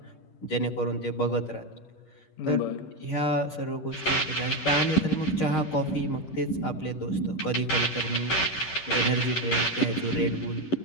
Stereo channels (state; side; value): late; right; 10 ms